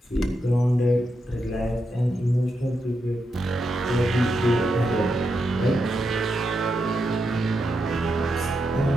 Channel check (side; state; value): both; normal; correlation 0.85